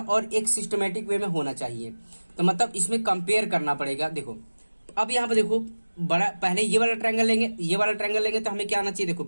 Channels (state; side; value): inverted; both; correlation -1.00